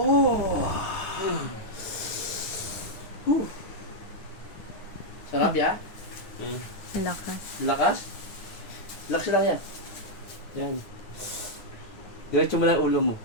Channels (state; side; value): late; right; 9.9 ms